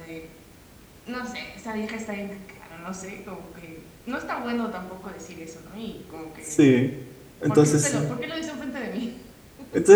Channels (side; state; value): both; identical; correlation 1.00